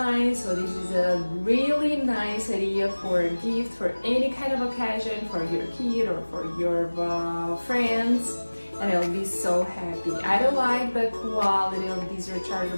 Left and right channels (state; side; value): inverted; both; correlation -1.00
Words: so this is a really nice idea for a gift for any kind of occasion for your kid or for your friends, and I'll be so happy. I don't like the quality of this